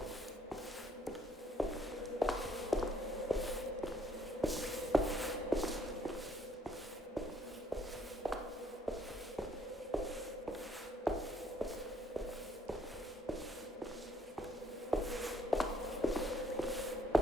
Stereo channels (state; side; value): normal; both; correlation 0.66